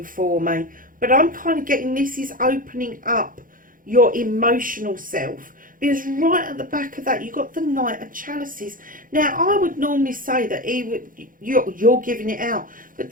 for me. But I'm kind of getting this is opening up your emotional self. Because right at the back of that, you've got the Knight of Chalices. Now, I would normally say that you're giving it out. But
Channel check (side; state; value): left; late; 0.40 ms